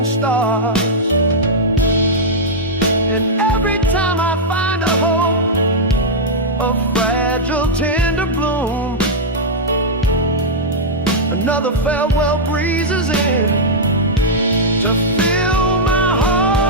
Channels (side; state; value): both; normal; correlation -0.07